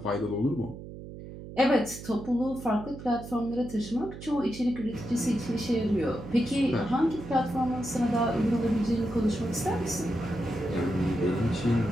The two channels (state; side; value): noise; right; hum, 12 dB below the sound